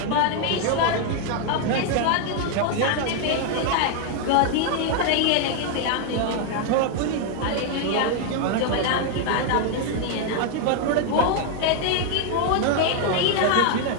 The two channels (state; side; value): different; both; correlation 0.00